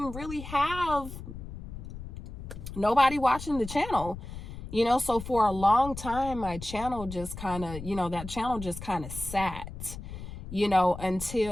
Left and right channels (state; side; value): noise; left; rumble, 10 dB below the sound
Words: really have nobody watching the channel, you know. So for a long time, my channel just kind of, you know, that channel just kind of sat, you know,